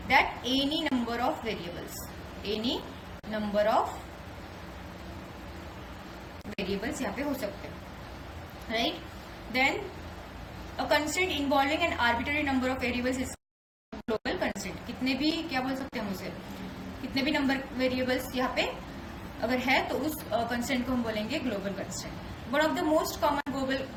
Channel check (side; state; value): both; identical; correlation 1.00